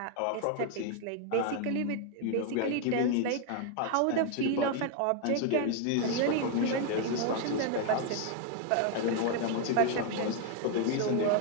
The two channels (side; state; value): both; different; correlation 0.00